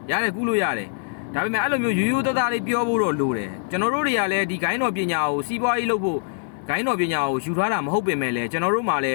ရတယ်ကူးလို့ရတယ်ဒါပေမဲ့အဲ့လိုမျိုးရိုးရိုးသားသားလေးပြောဖို့တော့လိုတယ်ကျွန်တော်တို့တွေကလည်းဒီဂိုင်းတော်ပညာကိုစီးပွားရေးလုပ်ဖို့ဂိုင်းတော်ပညာကိုယူထားတာမဟုတ်ပင်မဲ့လည်းကျွန်တော်တို့မှလည်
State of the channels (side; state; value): right; silent; 63 dB below the other